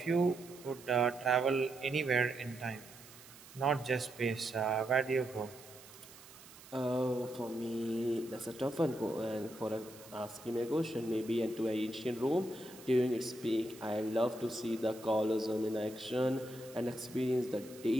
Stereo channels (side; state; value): right; noise; hiss, 19 dB below the sound